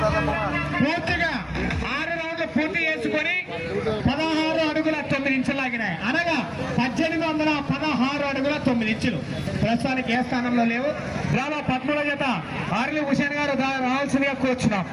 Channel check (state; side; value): identical; both; correlation 1.00